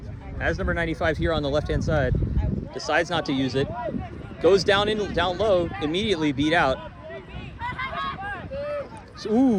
Has number 95 here on the left-hand side. Decides not to use it. Goes down low, immediately beat out. So,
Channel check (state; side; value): identical; both; correlation 1.00